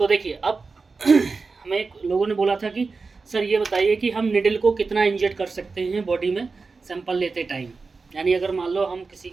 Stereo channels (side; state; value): left; quieter; 4.3 dB